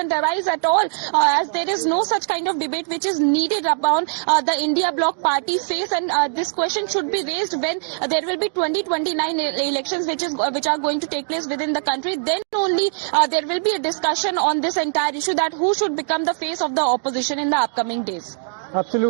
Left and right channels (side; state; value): left; silent; digital silence